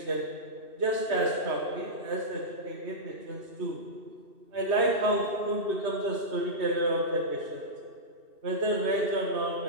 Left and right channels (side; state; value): left; late; 2.6 ms